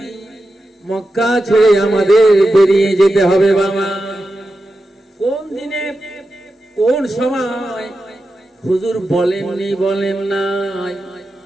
মক্কা ছেড়ে আমাদের বেরিয়ে যেতে হবে বাবা। কোন দিনে, কোন সময় হুজুর বলেননি, বলেন নাই,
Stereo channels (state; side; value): normal; both; correlation 0.90